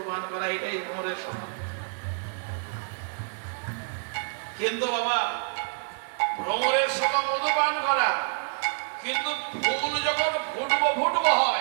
পান করা, এটাই ভ্রমরের স্বভাব। কিন্তু বাবা ভ্রমরের স্বভাব মধু পান করা, কিন্তু ফুল যখন ফুটবো ফুটবো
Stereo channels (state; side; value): silent; left; 58 dB below the other